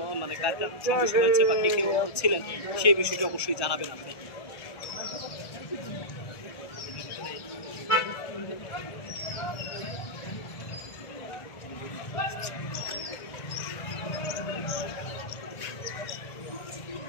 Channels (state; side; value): late; right; 1.1 ms